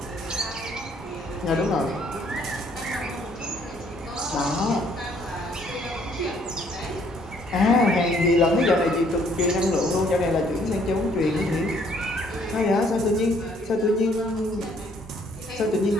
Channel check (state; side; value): normal; both; correlation 0.64